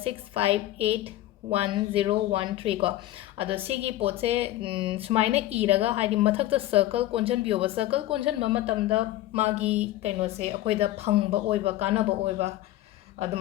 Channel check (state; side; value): quieter; right; 15.2 dB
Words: 65811013 को अदो सिगी पोत से सुमाइना इरगा हाइदि मथक्ता सर्कल कोंजनबियोबा सर्कल कोंजनबा मतमदा मागी कनो से अखोइदा फंगबा ओइबा कानाबा ओइबा